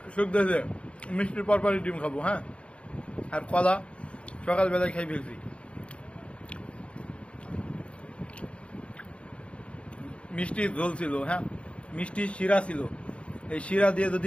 শুক দিয়েছে, মিষ্টির পরপরই ডিম খাবো, হ্যাঁ, আর কলা সকালবেলায় খাই ফেলছি। মিষ্টি ঝোল ছিল, হ্যাঁ, মিষ্টি শিরা ছিল, এই শিরা দিয়ে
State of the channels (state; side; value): late; right; 0.060 ms